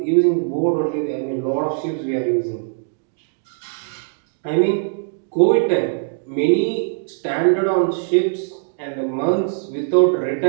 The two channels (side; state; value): left; silent; digital silence